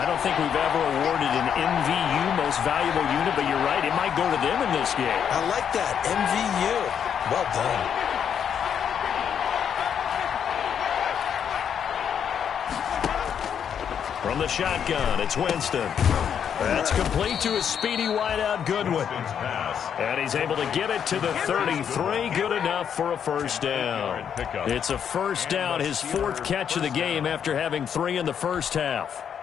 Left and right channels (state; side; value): quieter; right; 8.1 dB